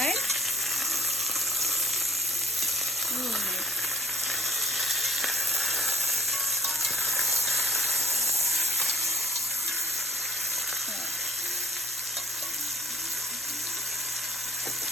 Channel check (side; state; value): both; normal; correlation 0.54